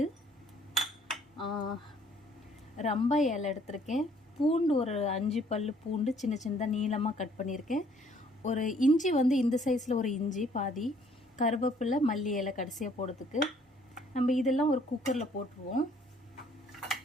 ரம்பா இலை எடுத்திருக்கேன். பூண்டு ஒரு 5 பல் பூண்டு சின்ன சின்னதாக நீளமாக கட் பண்ணியிருக்கேன். ஒரு இஞ்சி இந்த சைஸில் ஒரு இஞ்சி பாதி, கருவேப்பிலை, மல்லி இலை கடைசியாக போடுறதுக்கு. நம்ம இதெல்லாம் ஒரு குக்கரில் போட்டுருவோம்.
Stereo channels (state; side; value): normal; both; correlation 0.61